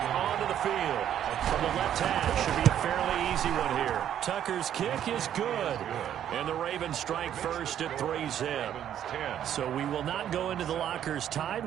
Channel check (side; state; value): left; quieter; 10.3 dB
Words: onto the field. From the left half, should be a fairly easy one here. Tucker's kick is good. And the Ravens strike first at 3-zip. So we will not go into the lockers tied.